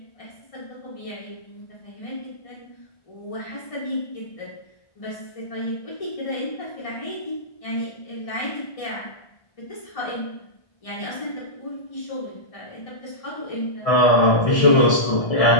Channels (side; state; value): right; late; 1.6 ms